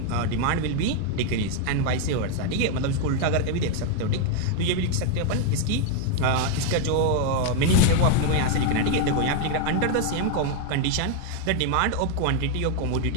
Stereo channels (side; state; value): both; different; correlation 0.00